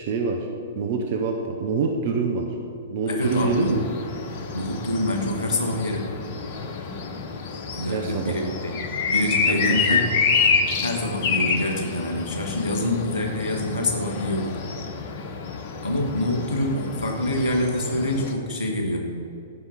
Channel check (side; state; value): both; inverted; correlation -0.40